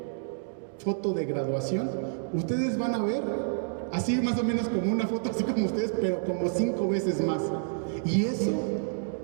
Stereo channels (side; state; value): left; silent; digital silence